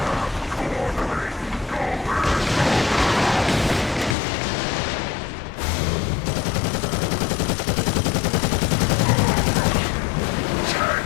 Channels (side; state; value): right; drops out; at 4.2 s